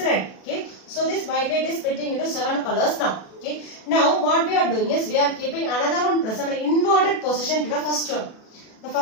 Okay, so this white light is splitting into 7 colors now. Okay, now what we are doing is we are keeping another one prism in inverted position to the first one. The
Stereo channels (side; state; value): right; late; 37 ms